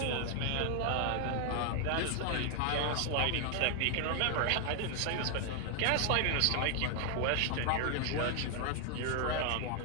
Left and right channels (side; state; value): both; different; correlation 0.00